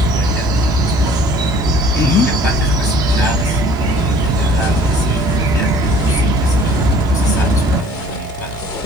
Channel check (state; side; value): noise; left; hiss, 30 dB below the sound